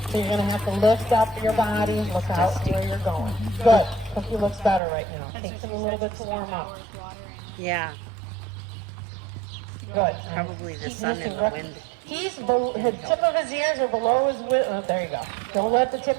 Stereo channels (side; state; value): left; drops out; at 4.8 s